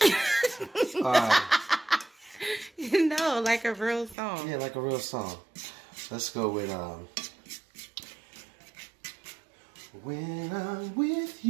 mind. No, like a real song. Yeah, like a real song. Let's go with when I'm with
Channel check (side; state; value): left; drops out; at 4.2 s